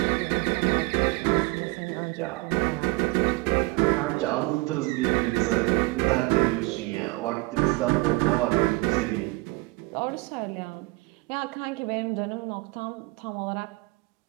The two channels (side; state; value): left; quieter; 24.2 dB